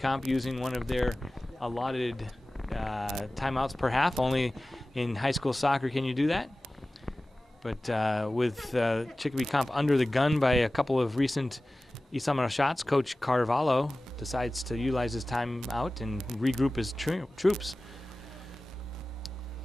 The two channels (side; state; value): both; normal; correlation 0.97